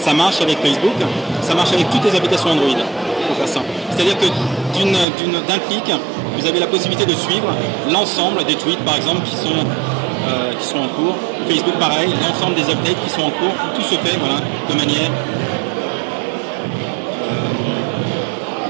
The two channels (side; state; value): left; drops out; at 5.1 s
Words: marche avec Facebook, ça marche avec toutes les applications Android. Pour faire ça. C'est-à-dire que d'un clic, vous avez la possibilité de suivre l'ensemble des tweets, par exemple, qui sont en cours. Facebook, pareil, l'ensemble des updates qui sont en cours. Tout se fait, voilà, de manière